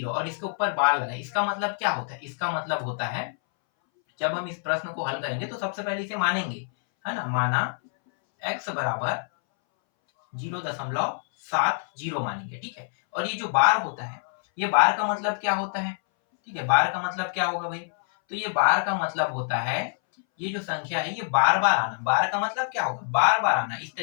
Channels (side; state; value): right; silent; 61 dB below the other